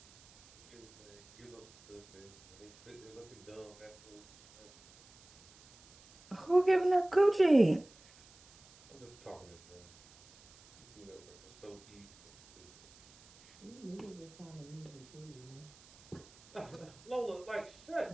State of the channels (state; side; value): noise; right; hiss, 24 dB below the sound